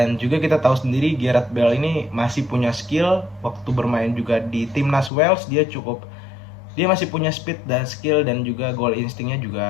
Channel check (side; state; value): right; drops out; at 5.1 s